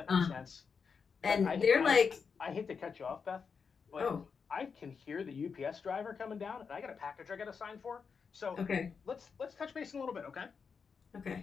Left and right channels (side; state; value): right; quieter; 5.7 dB